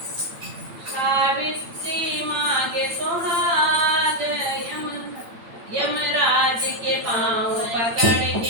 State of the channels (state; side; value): late; left; 8.8 ms